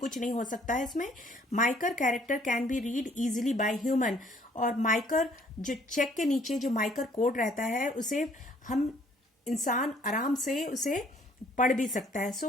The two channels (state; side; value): normal; both; correlation 0.61